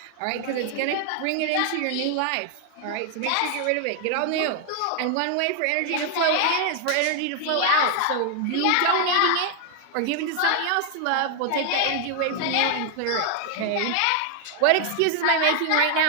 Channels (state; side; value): different; both; correlation 0.00